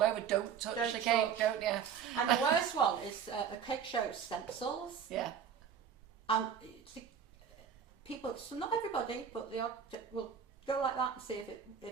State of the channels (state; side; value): quieter; left; 7.6 dB